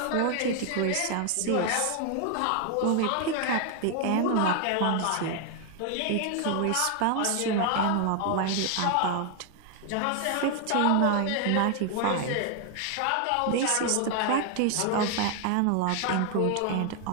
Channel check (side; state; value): both; different; correlation 0.00